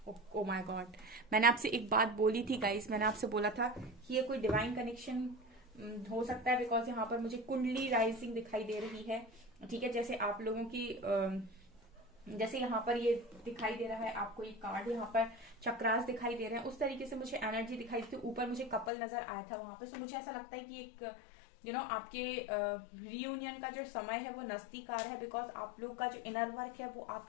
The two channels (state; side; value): drops out; right; at 18.9 s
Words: Oh my God, मैंने आपसे एक बात बोली थी गाइस, मैंने आपसे बोला था कि ये कोई डिवाइन कनेक्शन हो सकता है, बिकॉज यहाँ पर मुझे कुंडली राइजिंग दिखाई दे रही है। ठीक है, जैसे आप लोगों की जैसे यहाँ पर ये दिखाई दे रहा है आपको, ये कार्ड यहाँ पर चक्रास दिखाई दे रहे हैं, उस तरीके से मुझे एनर्जी दिखाई दी थी। ऊपर मुझे कपल नजर आया था वहां पे। सो मुझे ऐसा लगता है कि एक आपके रियूनियन का जो समय है वो नजदीक आ रहा है, बिकॉज आप लोग का जो इनर वर्क है वो